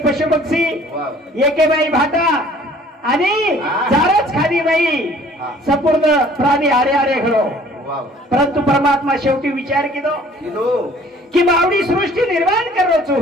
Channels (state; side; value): normal; both; correlation 0.54